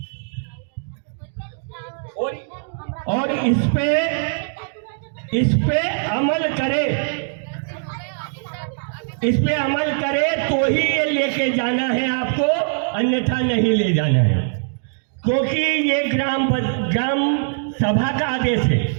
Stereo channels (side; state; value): left; silent; digital silence